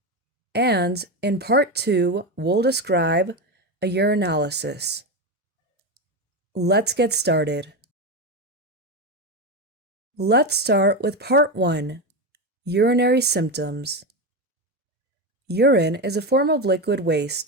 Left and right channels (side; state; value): both; normal; correlation 0.15